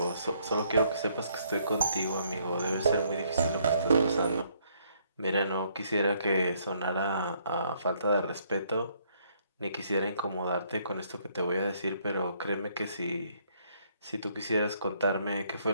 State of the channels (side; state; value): both; inverted; correlation -0.68